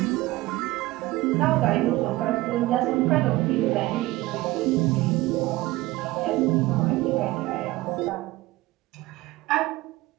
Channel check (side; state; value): left; quieter; 18.6 dB